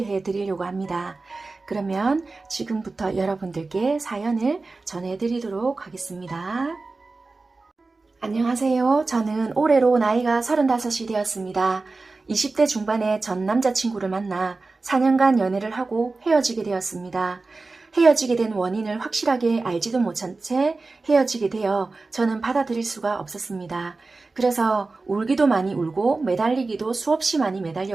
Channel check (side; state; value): left; quieter; 3.6 dB